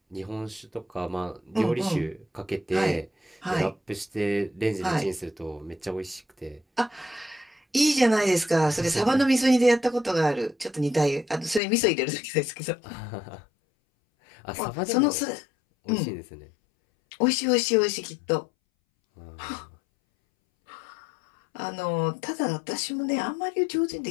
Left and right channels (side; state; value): right; drops out; at 11.6 s